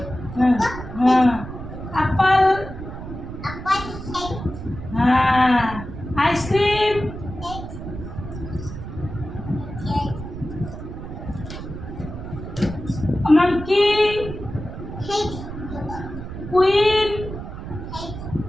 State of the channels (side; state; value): right; noise; rumble, 10 dB below the sound